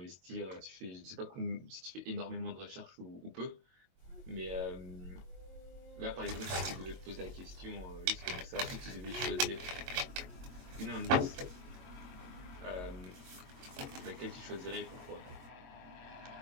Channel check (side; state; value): left; late; 22 ms